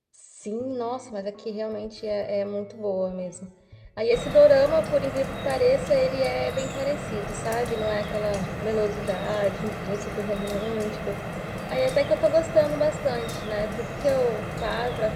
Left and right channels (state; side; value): identical; both; correlation 1.00